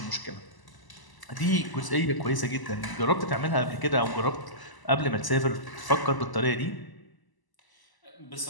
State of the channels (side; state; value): right; late; 1.0 ms